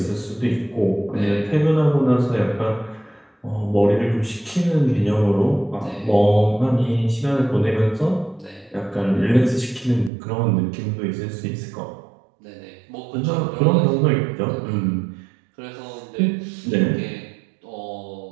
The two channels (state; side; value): drops out; left; at 10.1 s